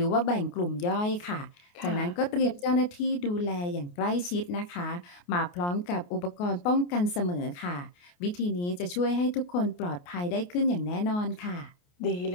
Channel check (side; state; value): right; late; 28 ms